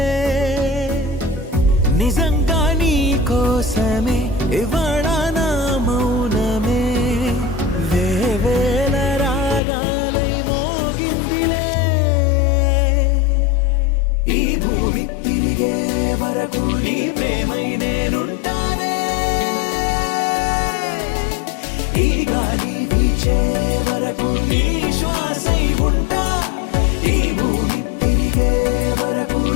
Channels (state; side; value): drops out; right; at 9.6 s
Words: నిజంగా నీ కోసమే ఇవాళ నా మౌనమే వేవేల రాగాలై మోగిందిలే ఈ భూమి తిరిగే వరకు నీ ప్రేమై నేనుంటానే ఈ గాలి వీచే వరకు నీ శ్వాసై ఉంటా ఈ భూమి తిరిగే వరకు